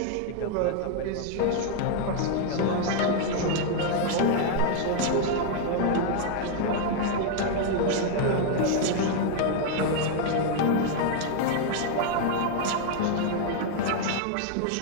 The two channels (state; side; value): different; both; correlation 0.00